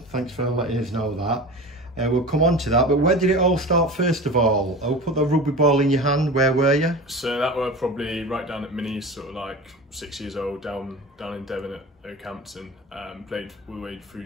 Thanks for letting us know that. We'll come on to that, but where did it all start first of all? Oh, put the rugby ball in your hand, where were you? So that were probably right down at Minis, sort of like 6 years old, down in Devon at Oakhampton. Played all the way through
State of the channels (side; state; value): both; normal; correlation 0.32